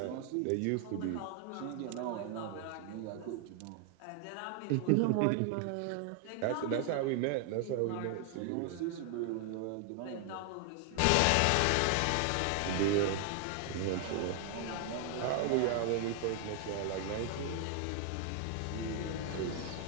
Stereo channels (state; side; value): different; both; correlation 0.00